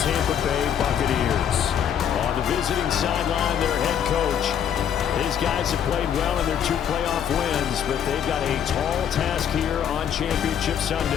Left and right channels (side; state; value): right; quieter; 8.9 dB